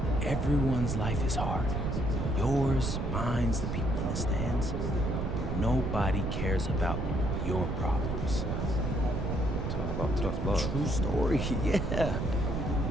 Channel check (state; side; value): noise; right; rumble, 2 dB below the sound